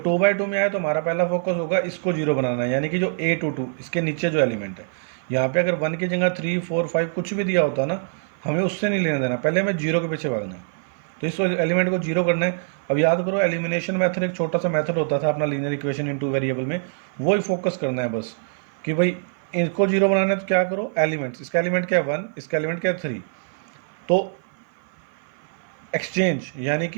2/2 में आए तो हमारा पहला फोकस होगा इसको 0 बनाना है, यानी कि जो A to 2 इसके नीचे जो एलिमेंट है, यहाँ पे अगर 1 की जगह 3 4 5 कुछ भी दिया होता ना, हमें उससे नहीं लेना देना, पहले हमें 0 के पीछे भागना है। तो इस एलिमेंट को 0 करना है। अब याद करो एलिमिनेशन मेथड एक छोटा सा मेथड होता था अपना लीनियर इक्वेशन इन 2 वेरिएबल में, वही फोकस करना है बस कि भाई इनको 0 बनाना है। तो क्या करो, एलिमेंट्स, इसका एलिमेंट क्या है 1, इसका एलिमेंट क्या है 3, तो एक्सचेंज, यानी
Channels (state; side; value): silent; left; 55 dB below the other